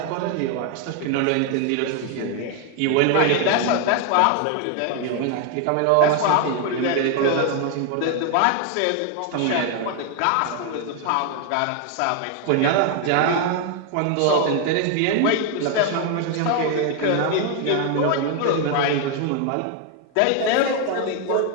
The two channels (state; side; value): different; both; correlation 0.01